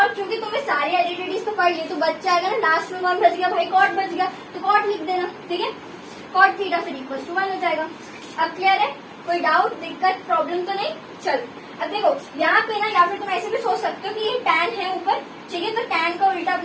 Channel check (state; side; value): identical; both; correlation 1.00